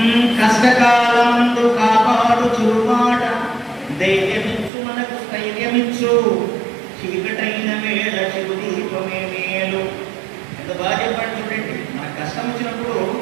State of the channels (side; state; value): left; drops out; at 4.7 s